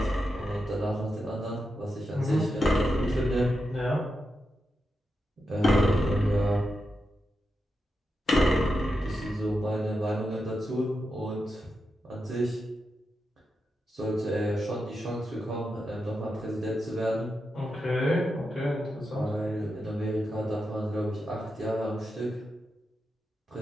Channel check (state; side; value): normal; both; correlation 0.87